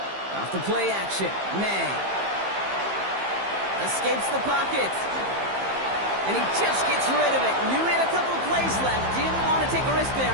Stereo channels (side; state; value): left; late; 15 ms